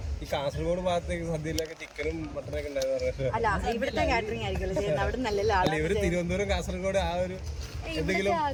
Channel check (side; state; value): both; identical; correlation 1.00